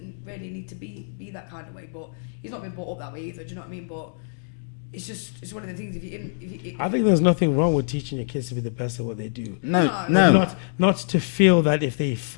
really need to be that kind of way, but he's not been brought up that way either, do you know what I mean? But it's one of the things, if I think there's nothing wrong with teaching your kids to be the best at what they do. No. Not to feel that if they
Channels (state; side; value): silent; right; digital silence